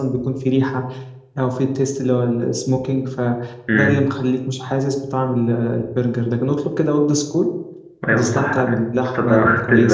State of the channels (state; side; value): identical; both; correlation 1.00